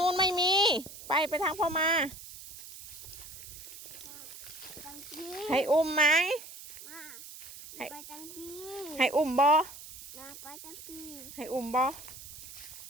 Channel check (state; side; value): noise; right; hiss, 14 dB below the sound